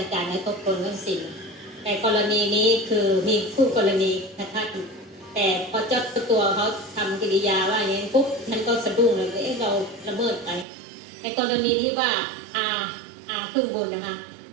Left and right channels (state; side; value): drops out; left; at 10.7 s